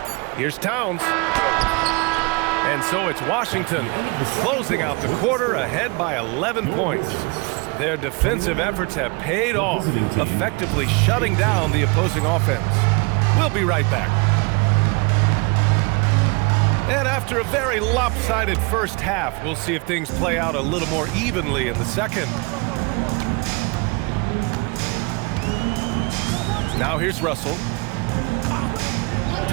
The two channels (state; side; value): quieter; left; 29.5 dB